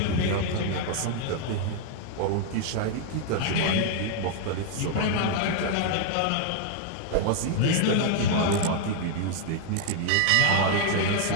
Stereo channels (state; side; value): different; both; correlation 0.00